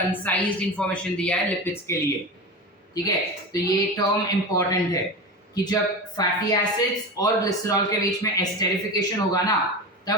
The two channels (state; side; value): normal; both; correlation 0.26